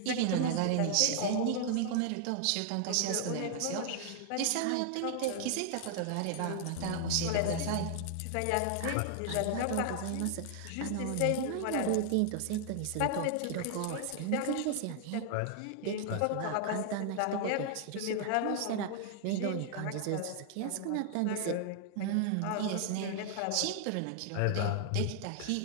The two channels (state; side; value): different; both; correlation 0.00